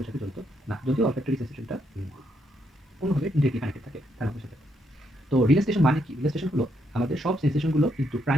সাথে জড়িত না, যদিও অলফ্যাক্টরি সেন্সেশনটা অন্যভাবে ডিরেক্টলি কানেক্টেড থাকে থ্যালামাসের সাথে। তো রিলেস্টেশন মানে কি? রিলেস্টেশন হলো আমাদের সব সেন্সেশনগুলো কিন্তু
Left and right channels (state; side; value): normal; both; correlation 0.76